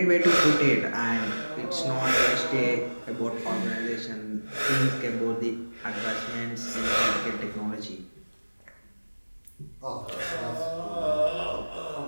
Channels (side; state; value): both; inverted; correlation -1.00